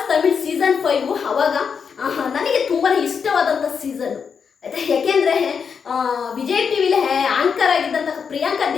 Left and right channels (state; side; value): quieter; right; 6.3 dB